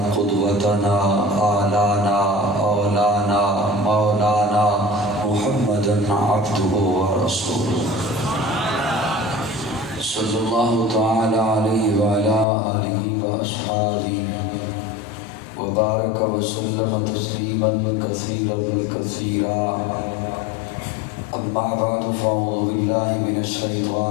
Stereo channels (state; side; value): drops out; right; at 12.5 s